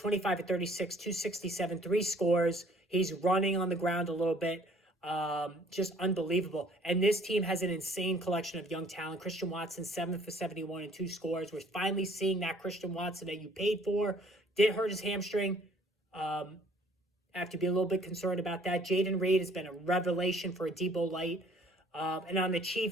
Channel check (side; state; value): both; normal; correlation 0.58